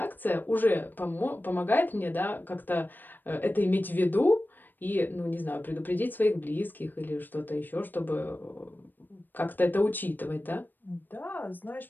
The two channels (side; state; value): right; late; 0.091 ms